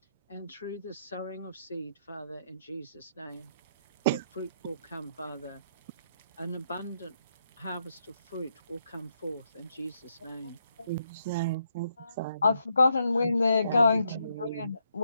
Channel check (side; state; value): both; inverted; correlation -0.78